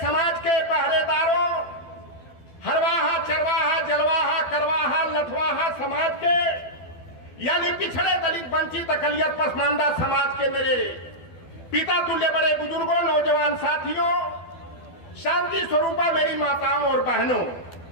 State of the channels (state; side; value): late; right; 12 ms